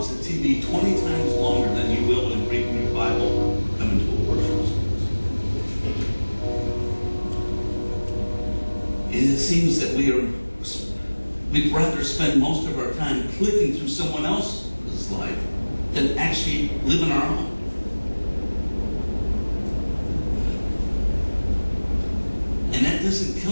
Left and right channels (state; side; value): inverted; both; correlation -1.00